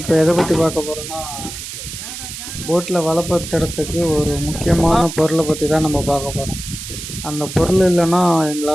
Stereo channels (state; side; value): noise; right; hiss, 9 dB below the sound